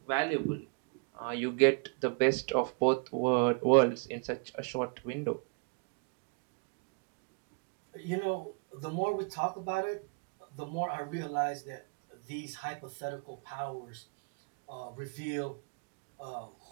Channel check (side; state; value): left; quieter; 36.0 dB